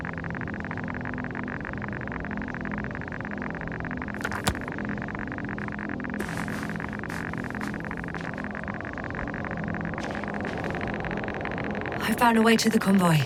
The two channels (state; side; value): identical; both; correlation 1.00